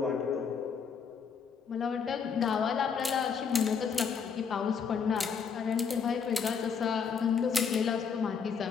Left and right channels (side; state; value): right; quieter; 6.3 dB